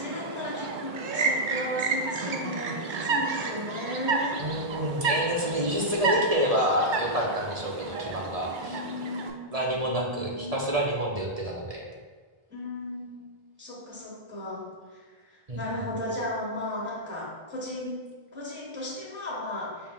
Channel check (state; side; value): late; left; 1.7 ms